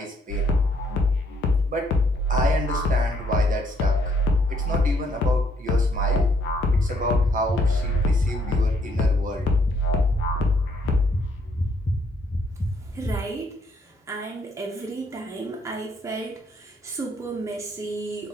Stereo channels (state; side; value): normal; both; correlation 0.69